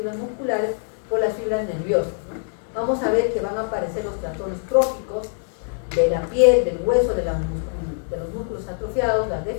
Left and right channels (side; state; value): right; silent; 63 dB below the other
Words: musculares por las fibras nerviosas, ¿no? Vamos a ver que van a aparecer los trastornos tróficos de la piel, del hueso, de los músculos atrofiados, las